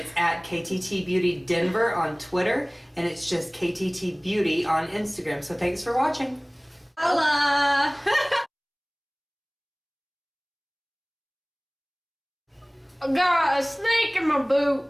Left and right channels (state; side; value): identical; both; correlation 1.00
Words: at KTT Beauty Denver on Twitter, and it's just KTT Beauty on Instagram. So thanks for watching. Holla! I got a snake in my